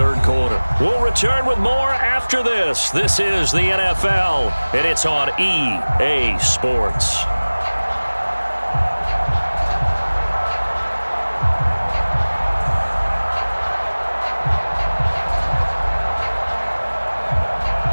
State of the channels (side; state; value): both; inverted; correlation -1.00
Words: quarter. We'll return with more after this. This is the NFL, and it's on EA Sports.